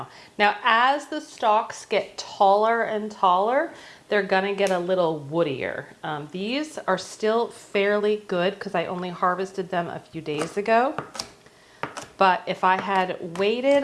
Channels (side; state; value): both; identical; correlation 1.00